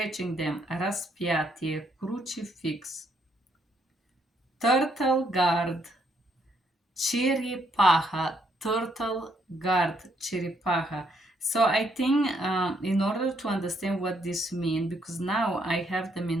them. Распятие. Crucifix. Turtle guard. Черепаха, turtle guard, черепаха. So I think in order to understand what this means, because now I have them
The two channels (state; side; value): normal; both; correlation 0.72